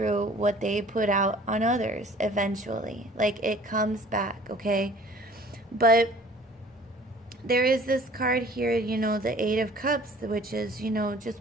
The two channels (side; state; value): both; normal; correlation 0.50